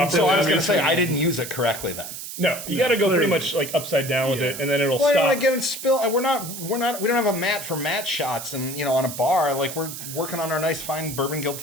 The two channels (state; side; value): noise; right; hiss, 9 dB below the sound